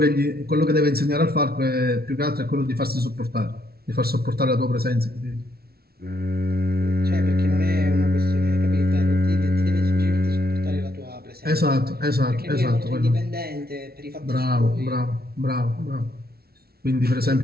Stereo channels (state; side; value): late; left; 0.45 ms